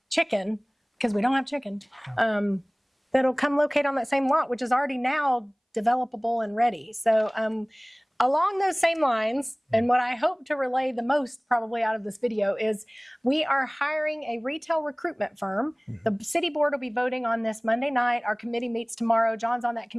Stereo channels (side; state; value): both; identical; correlation 1.00